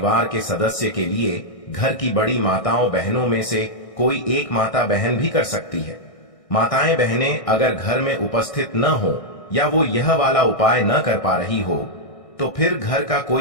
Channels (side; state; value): right; late; 1.6 ms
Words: के सदस्य के लिए घर की बड़ी माताओं बहनों में से कोई एक माता बहन भी कर सकती है। माताएं बहनें अगर घर में उपस्थित न हो या वो यह वाला उपाय न कर पा रही हो तो फिर घर का